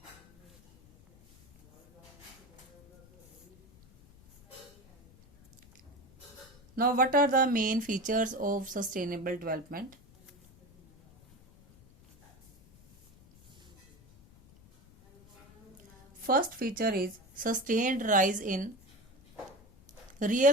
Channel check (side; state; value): left; noise; rumble, 26 dB below the sound